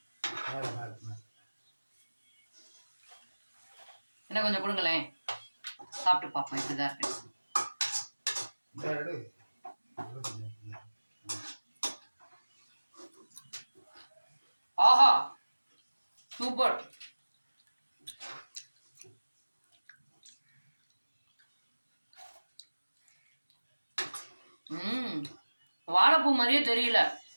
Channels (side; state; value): both; inverted; correlation -1.00